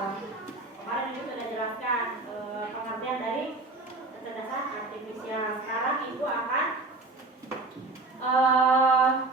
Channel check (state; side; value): quieter; left; 3.3 dB